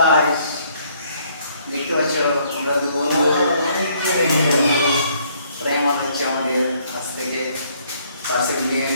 দেখতে পাচ্ছ আমরা দু বন্ধু প্রাইমার হচ্ছে আমাদের কাছ থেকে। পাশে নিয়ে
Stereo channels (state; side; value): inverted; both; correlation -0.66